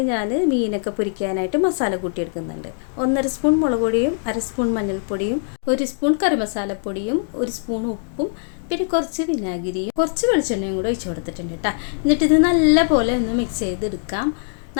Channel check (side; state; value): right; silent; digital silence